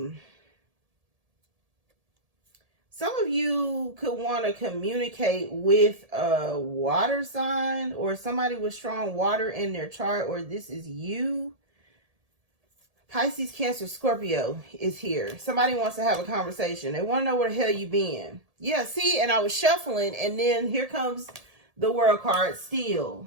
Some of you could want to communicate with a water sign, or somebody with strong water in their chart, or this is you. Pisces, Cancer, Scorpio is here. Somebody wants to have a conversation. They want to know where the hell you been. Yeah, see, and I was shuffling, and then here comes the World card still.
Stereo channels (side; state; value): left; late; 1.7 ms